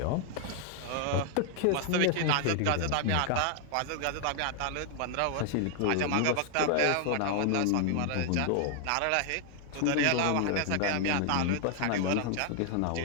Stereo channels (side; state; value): both; different; correlation 0.00